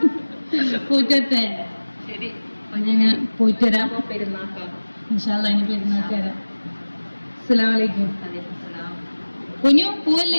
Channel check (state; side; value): inverted; both; correlation -1.00